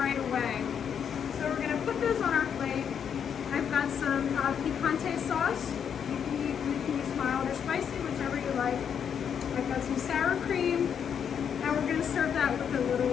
away. So we're going to put those on our plate. I've got some picante sauce. You can use mild or spicy, whichever you like. I've got some sour cream. And we're going to serve that with a little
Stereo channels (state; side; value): quieter; right; 7.8 dB